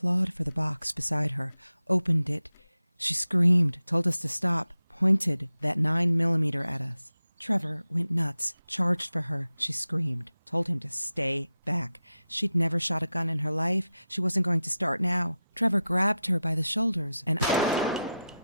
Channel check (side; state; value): both; inverted; correlation -0.91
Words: for the box beside her, opened it. She screamed, told us to stop, pointed that 9mm at us. Trevor went nuts, charged for her. She screamed, told him to stay back. She'd never shot a gun in her life. She wasn't going to start now. Trevor grabbed her by the shoulders and...